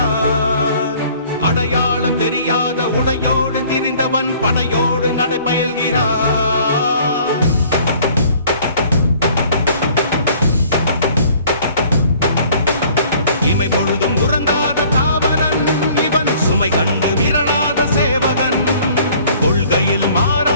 அடையாளம் தெரியாத உடையோடு திரிந்தவன் படையோடு நடைபயல்கிறார். இமை பொழுதும் உறங்காத தாவரன் இவன், சுமை கண்டு விரலாத சேவகன், கொள்கையில்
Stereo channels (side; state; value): both; inverted; correlation -0.54